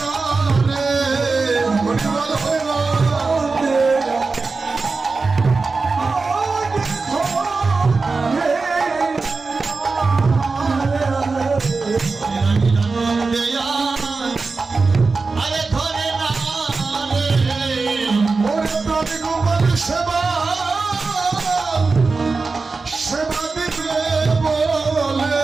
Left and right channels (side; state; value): left; quieter; 4.1 dB